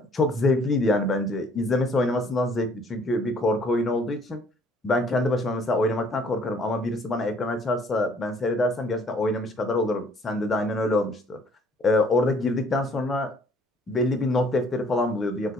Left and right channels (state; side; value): normal; both; correlation 0.59